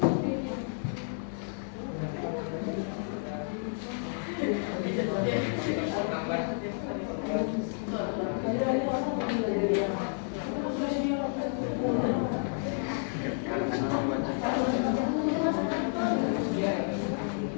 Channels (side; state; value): right; silent; 57 dB below the other